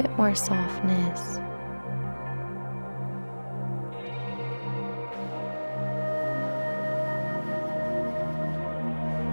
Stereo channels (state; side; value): inverted; both; correlation -1.00